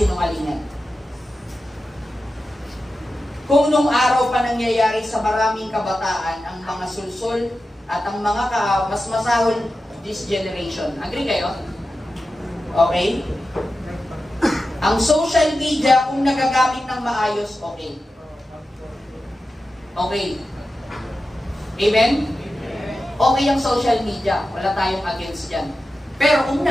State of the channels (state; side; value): normal; both; correlation 0.92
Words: Kung nung araw pa nangyayari sa maraming kabataan ang mga sulsul at ang mga mas masahol this generation. Agree kayo? Okay? Ang social media, kung nagagamit ng maayos, okay. Okay. Amen? Okay ang social media. Wala tayong against dyan. Pero kung